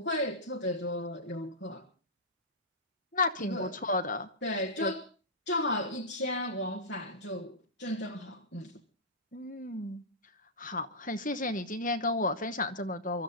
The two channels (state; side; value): normal; both; correlation -0.15